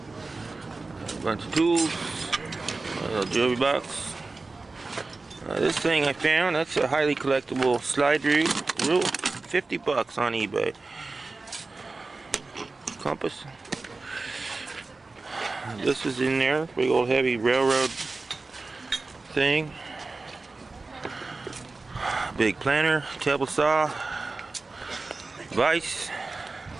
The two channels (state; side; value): quieter; left; 3.6 dB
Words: A bunch of tools. A little jewelry box. This thing I found, that's a highly collectible slide rule. 50 bucks on eBay. Compass. This is in there. Big old heavy railroad thing. Big planter, table saw, vise.